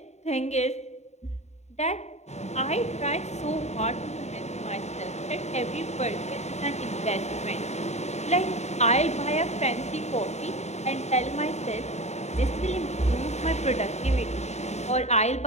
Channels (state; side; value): late; right; 0.32 ms